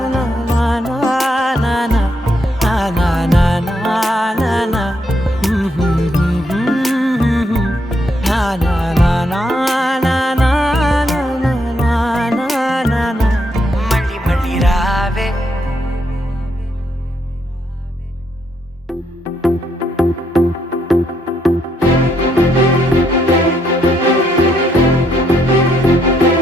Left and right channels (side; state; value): both; normal; correlation 0.76